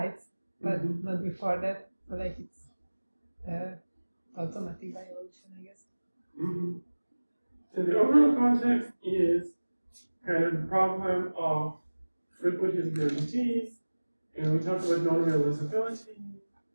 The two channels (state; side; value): inverted; both; correlation -1.00